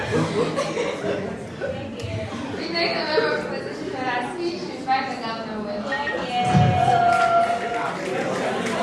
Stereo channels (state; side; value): identical; both; correlation 1.00